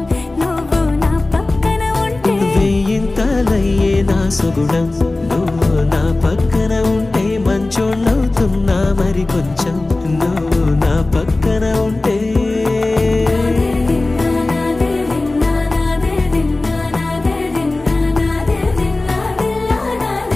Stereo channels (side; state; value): right; quieter; 3.0 dB